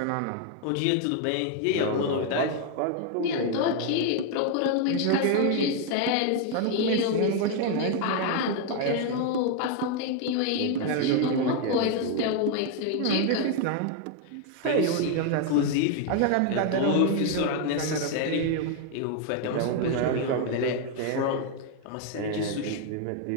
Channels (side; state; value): both; different; correlation 0.01